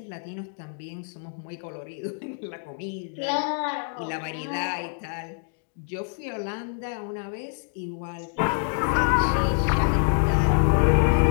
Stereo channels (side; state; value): right; silent; 61 dB below the other